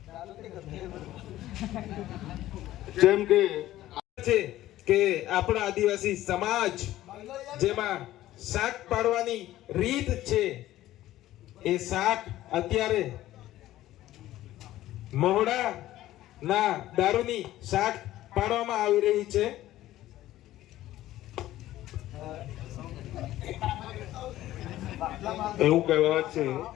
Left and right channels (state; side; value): quieter; right; 14.7 dB